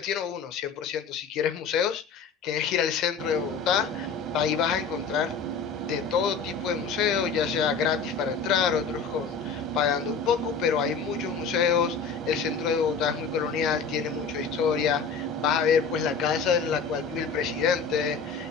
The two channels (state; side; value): quieter; right; 5.3 dB